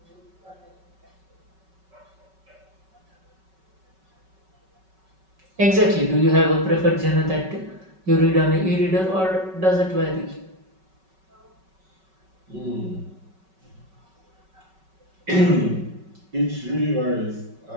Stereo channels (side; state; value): left; late; 5.3 ms